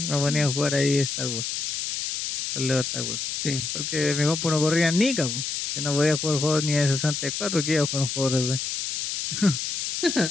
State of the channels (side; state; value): left; noise; hiss, 3 dB below the sound